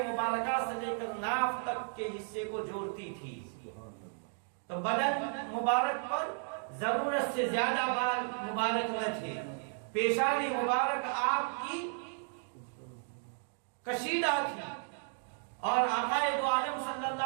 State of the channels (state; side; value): silent; left; 55 dB below the other